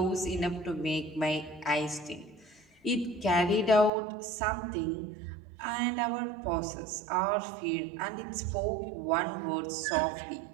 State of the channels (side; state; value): left; drops out; at 3.9 s